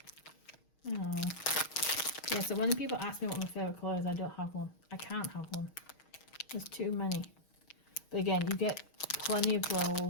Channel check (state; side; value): late; right; 6.4 ms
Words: Oh. Yeah, so when people ask me what my favourite colour is, I don't have one. I can't have one. There's too many. But again, you get plenty of